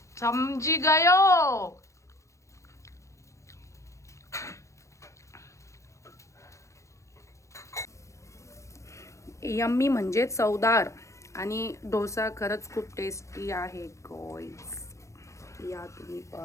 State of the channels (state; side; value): late; right; 0.15 ms